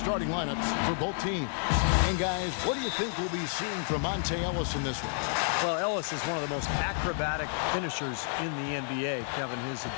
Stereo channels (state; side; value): silent; right; digital silence